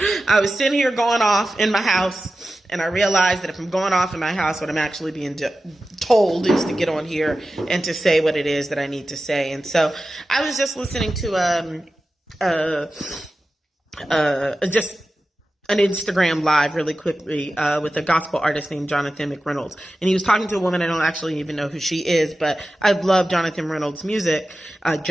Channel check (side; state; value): both; normal; correlation 0.94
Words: was sitting here going off in my house, and I realized that if I'm going off in my house, what I'm actually being told is to get on here and to say what it is that I need to say. And so I was just listening to just an Instagram live really quickly with a gospel artist named Jonathan McReynolds. And he was talking to a woman. I don't actually even know who she is, but I love Jonathan Reynolds' music.